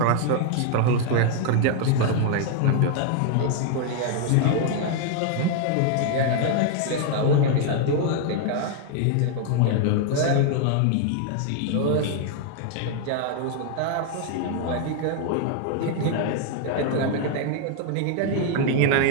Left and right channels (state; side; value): different; both; correlation 0.00